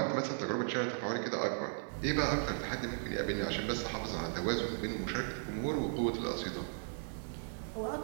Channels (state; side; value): silent; left; digital silence